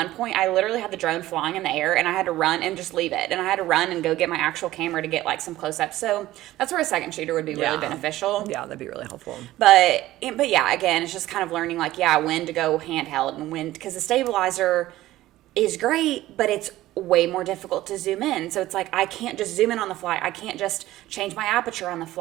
point, I literally had the drone flying in the air, and I had to run and just leave it. And I had to run and go get my actual camera to get, like, some close-ups. So that's where a second shooter would be really beneficial. Yeah, that'd be really helpful. But yeah, again, it's just kind of learning, like, yeah, when to go handheld and when, because the stabilizer is great, but it's way more difficult to zoom in. So it's like, I can't just zoom in on the fly. I can't just change my aperture on the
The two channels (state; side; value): quieter; left; 15.7 dB